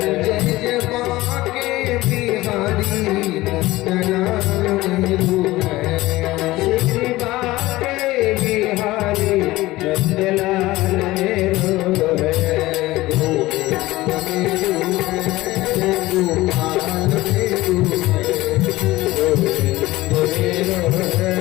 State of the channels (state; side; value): quieter; right; 18.3 dB